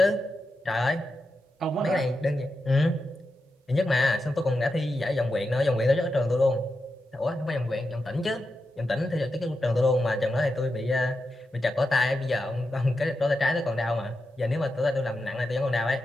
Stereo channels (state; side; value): normal; both; correlation 0.88